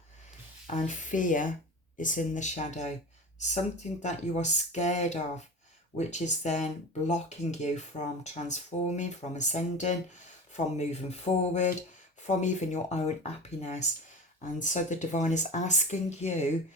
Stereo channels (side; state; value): both; normal; correlation 0.31